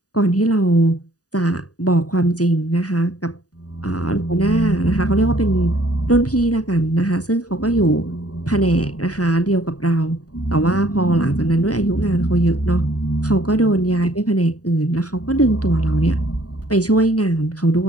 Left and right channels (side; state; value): right; late; 0.68 ms